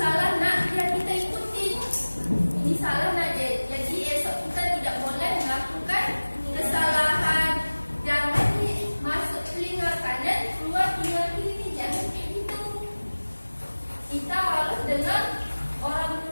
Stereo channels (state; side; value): inverted; both; correlation -1.00